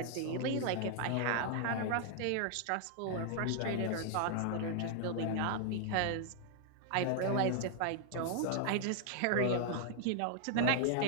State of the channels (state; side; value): different; both; correlation 0.00